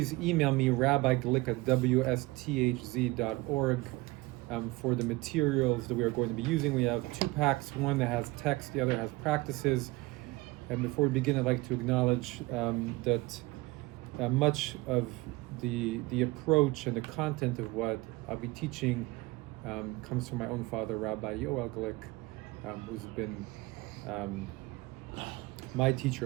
email me, rabbiglick at wsthz.org for the materials that we are going to be using. We have two packs, one that has text, the other has practices. And before we begin, I'd like to acknowledge that much of the approach and the content of what I'll be teaching comes from my own father, Rabbi Glick, who's been my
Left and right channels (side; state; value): left; quieter; 21.6 dB